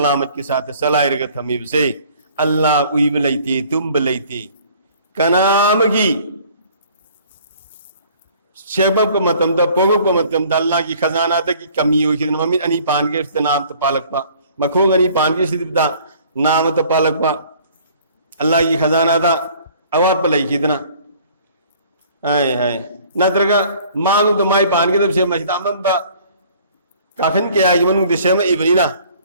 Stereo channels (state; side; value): inverted; both; correlation -0.54